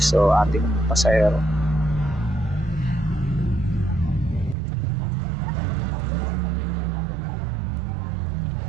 o ating pasahero.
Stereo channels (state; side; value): drops out; left; at 4.5 s